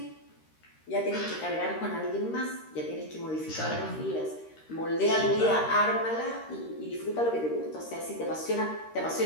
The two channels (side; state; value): right; late; 13 ms